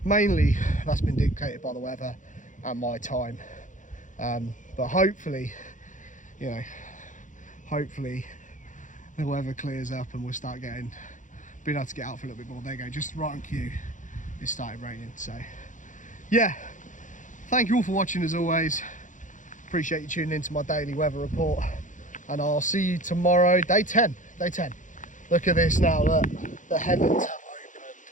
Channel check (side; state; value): right; late; 0.37 ms